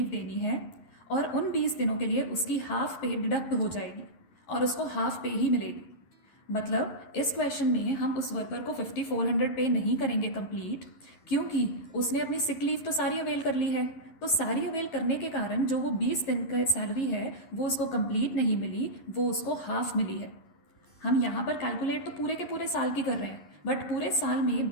देनी है और उन 20 दिनों के लिए उसकी हाफ पे डिडक्ट हो जाएगी और उसको हाफ पे ही मिलेगी। मतलब इस क्वेश्चन में हम उस वर्कर को 5400 पे नहीं करेंगे कंप्लीट, क्योंकि उसने अपनी सिक लीव तो सारी अवेल कर ली है। तो सारी अवेल करने के कारण जो वो 20 दिन का सैलरी है वो उसको कंप्लीट नहीं मिली, वो उसको हाफ मिली है। हम यहाँ पर कैलकुलेट तो पूरे के पूरे साल की कर रहे हैं, बट पूरे साल में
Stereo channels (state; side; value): late; right; 11 ms